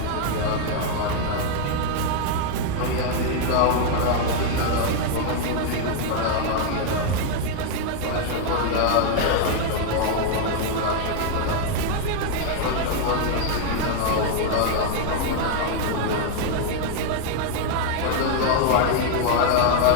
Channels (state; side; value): different; both; correlation 0.00